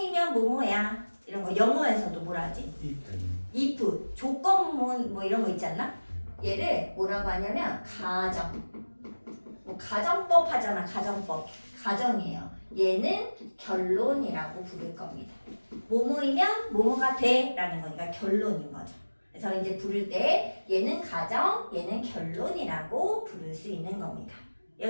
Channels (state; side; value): inverted; both; correlation -1.00